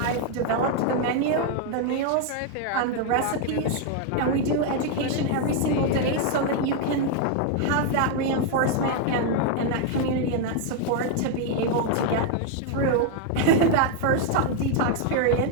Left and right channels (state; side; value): different; both; correlation 0.00